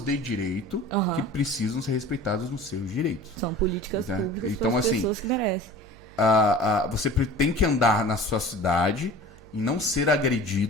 direito que precisam ser respeitadas nos seus direitos. São políticas públicas então, para as assim, pessoas que merecem. Você tem que andar na sua cidade e não ser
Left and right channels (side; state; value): right; noise; hum, 23 dB below the sound